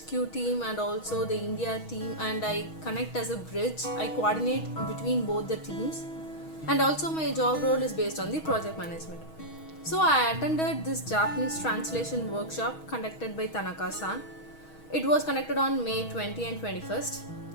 team and also the India team, and I connect as a bridge. I coordinate between both the teams, and also my job role is based on the project management. So I attended this Japanese translation workshop conducted by Tanaka-san. It was conducted on May 20 and 21st.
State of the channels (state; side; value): late; right; 6.3 ms